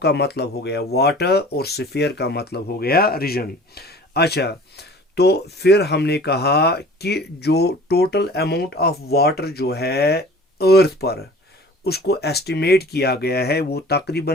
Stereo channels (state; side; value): normal; both; correlation 0.45